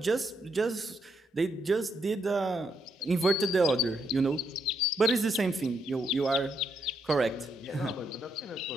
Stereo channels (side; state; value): both; normal; correlation 0.78